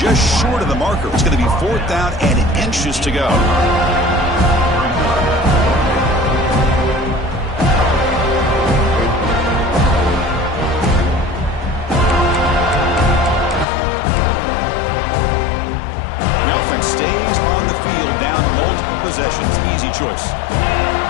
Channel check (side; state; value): right; drops out; at 13.7 s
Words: short of the marker. It's going to be 4th down and inches to go. The offense stays on the field down multiple possessions. Easy choice.